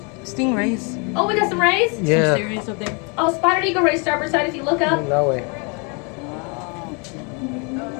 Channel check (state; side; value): quieter; right; 33.9 dB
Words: Stingrays. Oh, we got some rays? Yeah. Some stingrays up there. Oh, spotted eagle ray starboard side if you look up. That way.